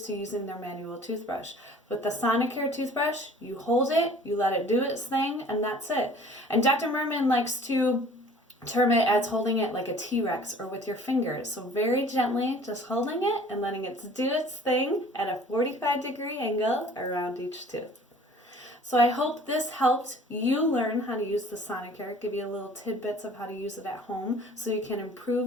to using their manual toothbrush. With the Sonicare toothbrush, you hold it, you let it do its thing, and that's it. And Dr. Merman likes to term it as holding it like a T-Rex or with your fingers. So very gently, just holding it and letting it do its thing at a 45-degree angle around each tooth. So I hope this helped you learn how to use the Sonicare, give you a little tidbits of how to use it at home so you can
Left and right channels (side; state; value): both; normal; correlation 0.50